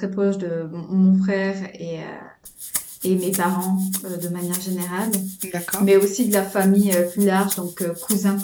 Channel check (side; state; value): both; identical; correlation 1.00